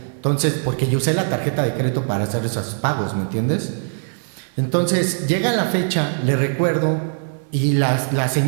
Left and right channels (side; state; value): left; silent; 60 dB below the other